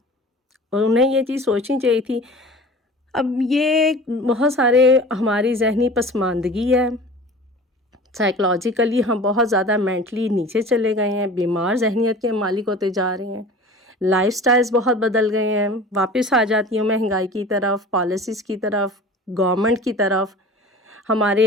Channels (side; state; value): both; normal; correlation 0.40